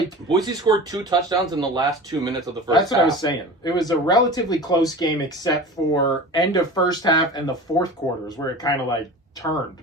Boise scored 2 touchdowns in the last 2 minutes of the first half. That's what I was saying. It was a relatively close game except for end of first half and the fourth quarters where it kind of like turned.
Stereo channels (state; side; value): normal; both; correlation 0.35